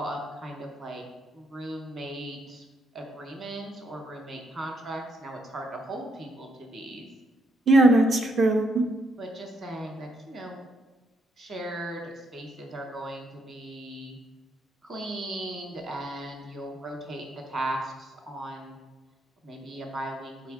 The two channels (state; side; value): normal; both; correlation 0.76